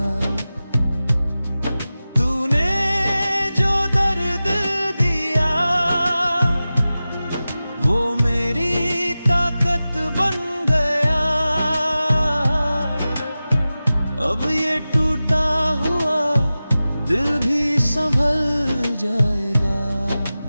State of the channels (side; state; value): both; inverted; correlation -0.95